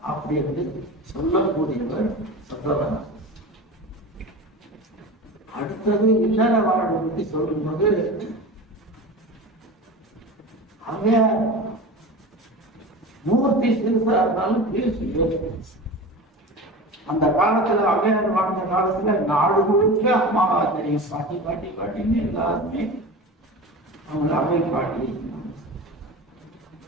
அப்படி வந்து சொல்லக்கூடியவர் சொல்றவன். அடுத்தது இல்லற வாழ்வை பற்றி சொல்லும்போது அவன் மூர்த்தி சிறுசா இருந்தாலும் பேசி அந்த காலத்துல அவையார் வாழ்ந்த காலத்துல நாடு முழுக்க அம்மாவா தெரியும். பாட்டி பாட்டி பாட்டின்னு எல்லாருமே அவங்கள அவை பாட்டி.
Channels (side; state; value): both; normal; correlation 0.31